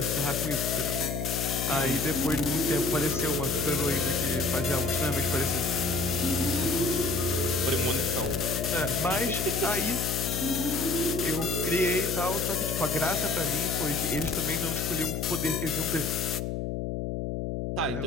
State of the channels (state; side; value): noise; left; hum, 3 dB below the sound